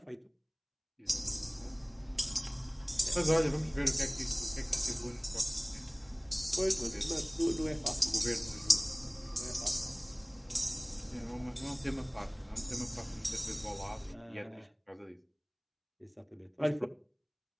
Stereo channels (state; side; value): identical; both; correlation 1.00